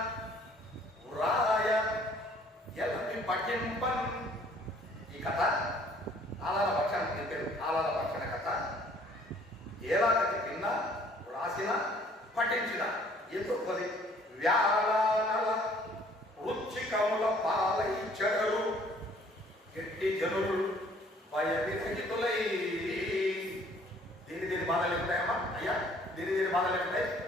వ్రాయ ఎలమి పఠింపన్. ఈ కథ ఆలాల భక్షణ చెప్పారు. ఆలాల భక్షణ కథ ఏలాగతి విన్న, వ్రాసిన, పఠించిన ఎందుకు వ్యాళానల వృచ్చికముల పాలై చెడరు గట్టి జనులు భయవిరహితులై. దీని బాధలు ఉంటాయమ్మా అయ్యా, దీని బాధలు ఉంటాయి.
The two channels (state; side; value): normal; both; correlation 0.58